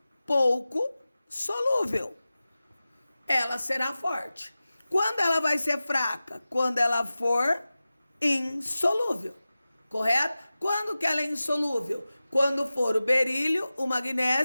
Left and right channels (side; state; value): both; inverted; correlation -0.96